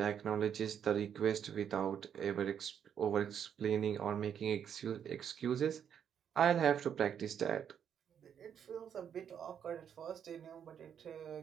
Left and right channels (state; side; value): quieter; left; 8.4 dB